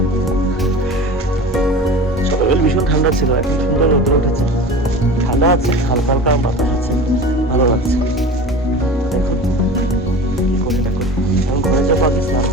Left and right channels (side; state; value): both; normal; correlation 0.36